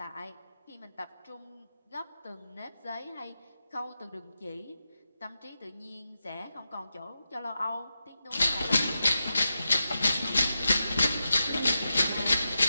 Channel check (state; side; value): inverted; both; correlation -0.89